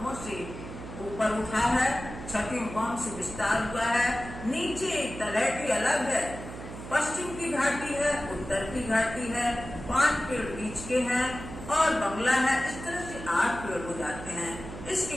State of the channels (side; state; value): right; noise; hum, 11 dB below the sound